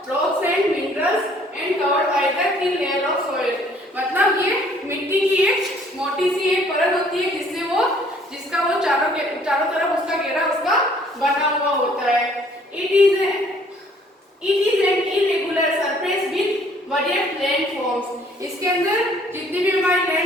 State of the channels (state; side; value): normal; both; correlation 0.59